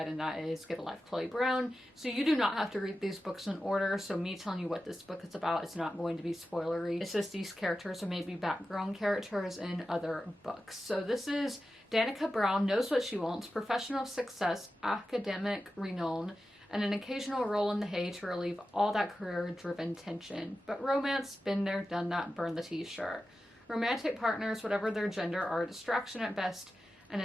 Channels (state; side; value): normal; both; correlation 0.92